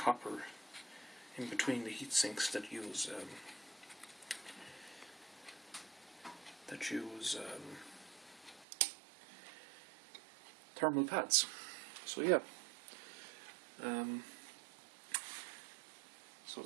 in between the heat sinks that use thermal pads. So yeah, so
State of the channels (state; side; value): drops out; left; at 8.7 s